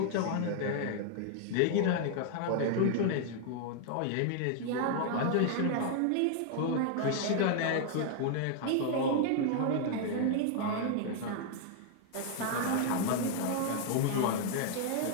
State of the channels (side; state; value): both; different; correlation 0.00